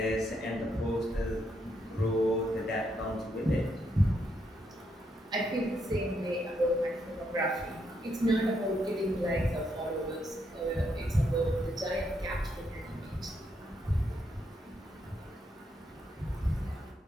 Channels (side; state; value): both; normal; correlation 0.77